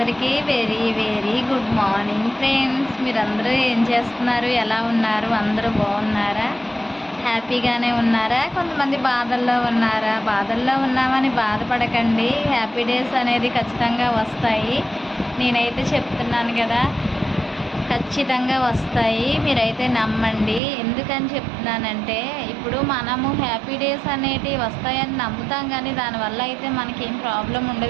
very very good morning friends. మీరందరూ ఏం చేస్తున్నారు? ఎలా ఉన్నారు? అందరూ బాగున్నారా? హ్యాపీగానే ఉన్నారా? కొంతమంది బాధల్లో ఉన్నారా? బాధల్లో ఉన్నామని బాధపడకండి. హ్యాపీ డేస్ అనేది ఖచ్చితంగా వస్తాయి. నేనైతే చెప్తున్నాను కదా, ఖచ్చితంగా వస్తాయి. మీరైతే నమ్మండి. ఎందుకని చెప్తున్నానంటే, ఇప్పుడు మనము హ్యాపీ డేస్ అనేటివి వస్తాయని నమ్ముతాం, కానీ దానివల్ల అయితే మనకేం ప్రాబ్లం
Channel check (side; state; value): left; drops out; at 20.6 s